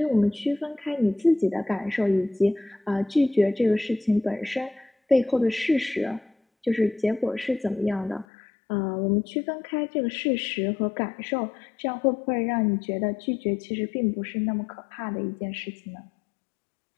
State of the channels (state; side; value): drops out; right; at 8.2 s